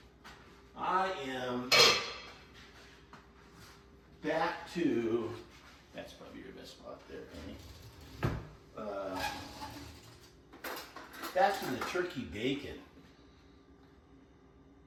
am back to, that's probably your best spot there, Penny. Back to the turkey bacon.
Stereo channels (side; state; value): both; identical; correlation 1.00